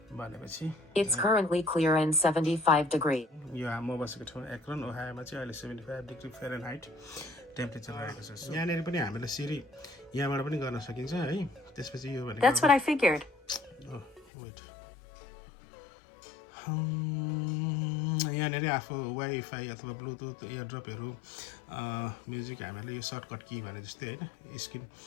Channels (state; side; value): drops out; right; at 14.2 s